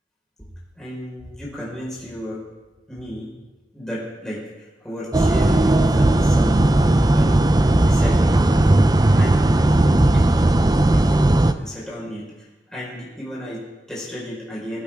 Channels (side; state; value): both; normal; correlation 0.92